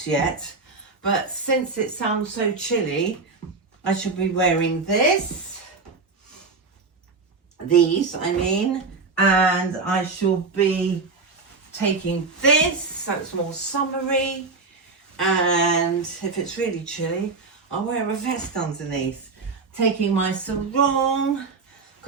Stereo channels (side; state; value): left; quieter; 4.1 dB